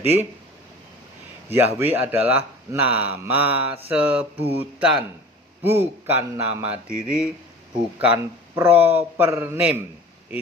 Yahweh adalah nama sebutan, bukan nama diri, bukan proper name.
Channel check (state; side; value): normal; both; correlation 0.41